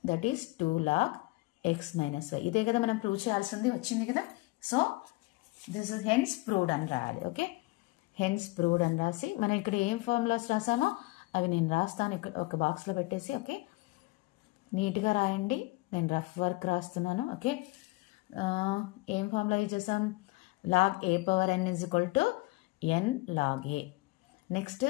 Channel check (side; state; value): right; quieter; 22.6 dB